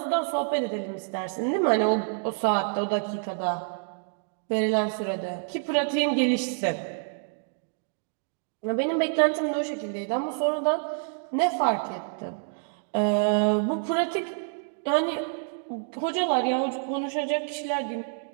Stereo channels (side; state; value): left; silent; digital silence